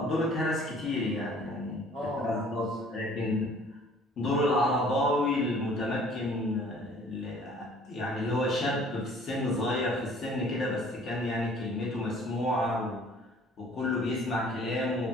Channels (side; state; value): both; normal; correlation 0.53